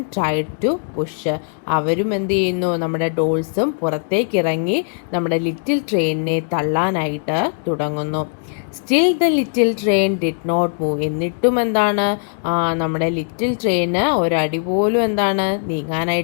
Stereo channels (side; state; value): right; silent; digital silence